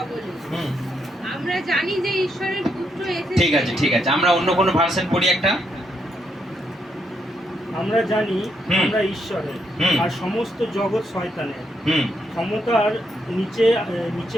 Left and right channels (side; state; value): both; normal; correlation 0.77